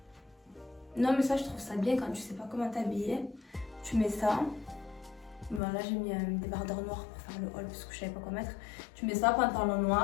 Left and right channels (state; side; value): drops out; right; at 5.6 s